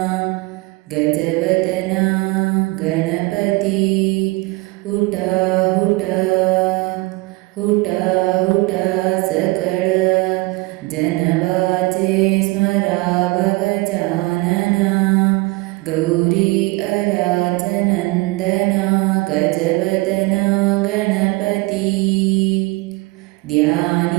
ಗಜವದನ ಗಣಪತಿ ಹುಟ ಹುಟ ಹುಟ ಹುಟ ಸಕಳ ಜನವಾಚೆ ಸ್ಮರಾವ ಗಜಾನನ ಗೌರಿ ಅರಾಜನಂದನ ಗಜವದನ ಗಣಪತಿ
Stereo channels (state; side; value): quieter; left; 23.5 dB